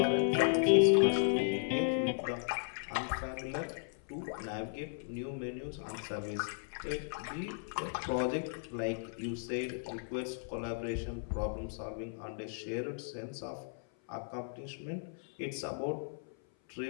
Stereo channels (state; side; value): silent; right; 54 dB below the other